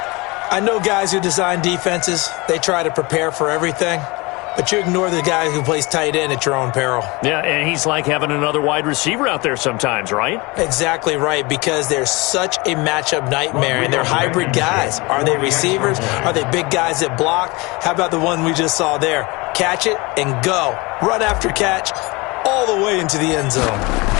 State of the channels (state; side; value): quieter; right; 25.1 dB